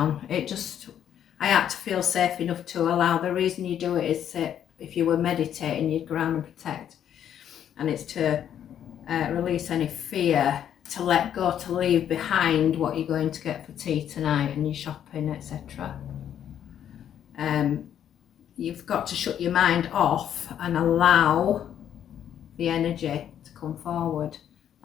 I had to feel safe enough to allow. The reason you do it is if you were meditating, you'd ground and protect, and it's to release any fear, to let go, to leave behind what you're going to get for tea tonight and your shopping, etc. You've got to shut your mind off and allow the energy to come forward.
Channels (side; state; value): right; quieter; 9.8 dB